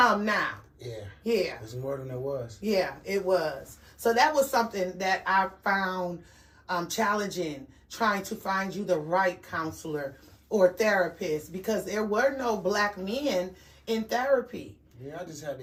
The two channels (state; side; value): identical; both; correlation 1.00